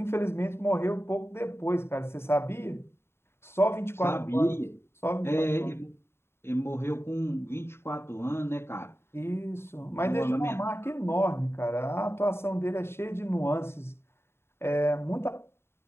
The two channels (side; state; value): right; late; 0.12 ms